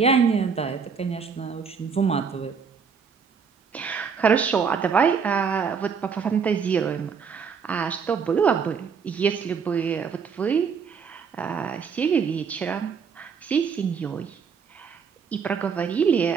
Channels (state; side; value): quieter; left; 6.1 dB